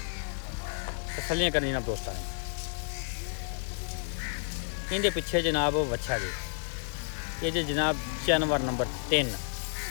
तसल्लियां करनी जनाब दोस्तां ने। इनके पिछे जनाब वच्छा जी ये जो जनाब जानवर नंबर 3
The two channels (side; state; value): right; silent; 57 dB below the other